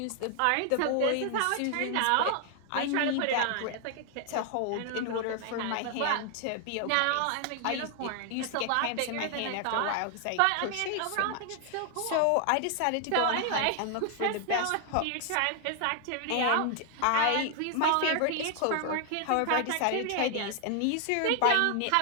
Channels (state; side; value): different; both; correlation 0.00